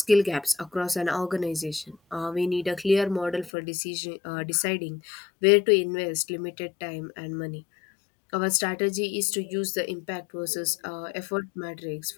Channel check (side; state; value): right; drops out; at 3.5 s